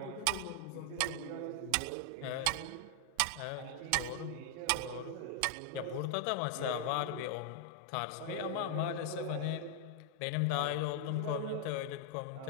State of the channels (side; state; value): both; different; correlation 0.00